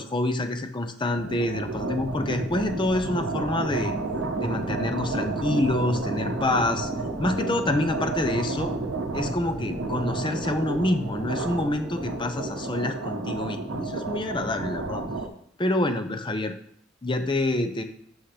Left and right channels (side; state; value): both; normal; correlation 0.56